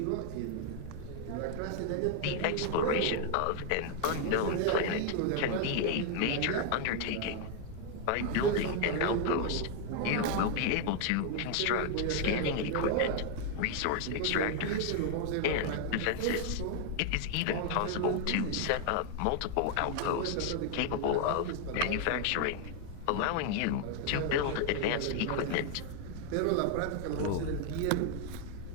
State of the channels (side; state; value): both; different; correlation 0.00